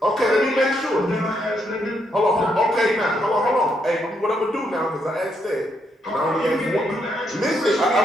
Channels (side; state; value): both; normal; correlation 0.77